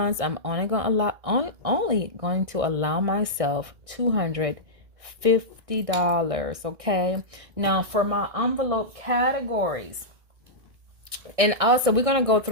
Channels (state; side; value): late; left; 1.6 ms